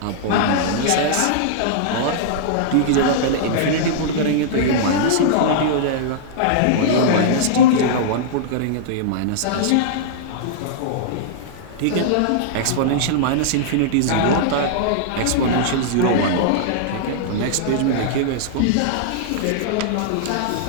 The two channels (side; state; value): both; different; correlation -0.02